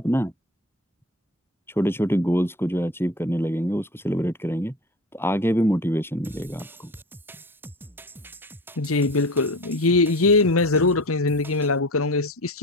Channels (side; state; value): both; normal; correlation 0.33